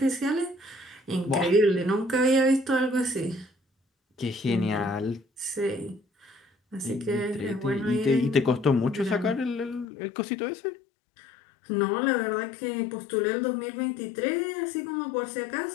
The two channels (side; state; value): right; drops out; at 9.9 s